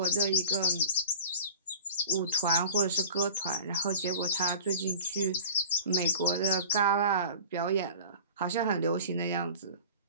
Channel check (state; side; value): inverted; both; correlation -0.40